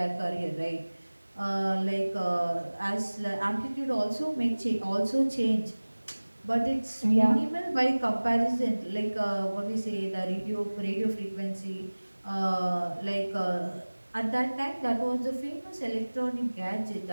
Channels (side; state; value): both; inverted; correlation -1.00